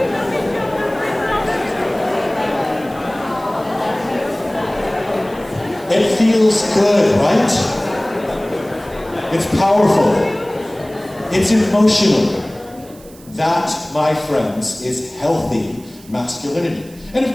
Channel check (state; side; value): noise; right; hiss, 23 dB below the sound